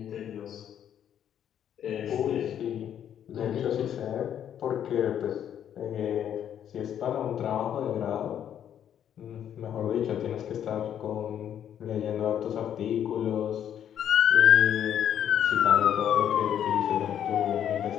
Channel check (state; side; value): quieter; right; 9.7 dB